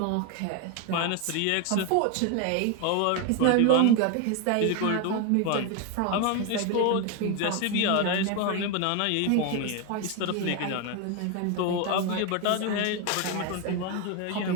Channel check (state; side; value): different; both; correlation 0.01